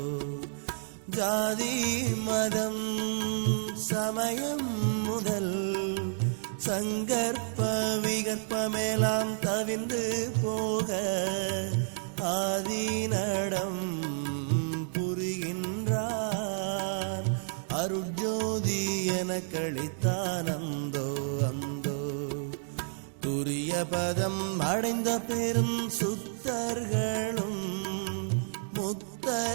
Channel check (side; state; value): left; silent; digital silence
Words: ஜாதி மதம் சமயம் முதல் சங்கற்ப விகற்பமெல்லாம் தவிந்து போக ஆதிநடம் புரிகின்றான் அருட்ஜோதி எனக்களித்தானந்தோ அந்தோ. துரிய பதம் அடைந்த பெரும் சுத்தர்களும்